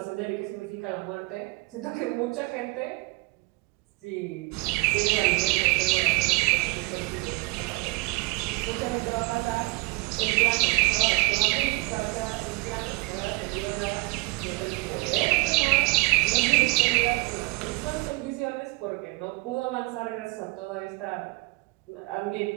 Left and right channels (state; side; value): quieter; left; 25.0 dB